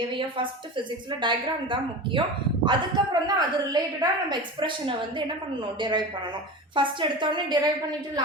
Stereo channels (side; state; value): both; normal; correlation 0.29